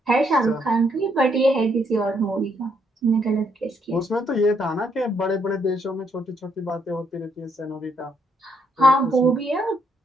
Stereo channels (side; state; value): both; normal; correlation 0.73